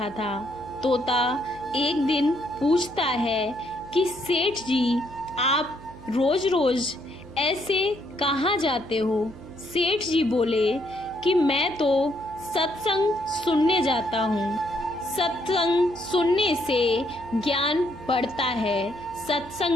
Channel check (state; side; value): noise; right; hum, 18 dB below the sound